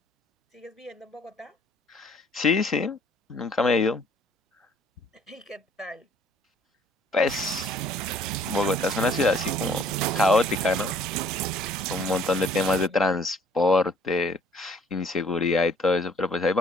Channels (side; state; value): both; normal; correlation 0.58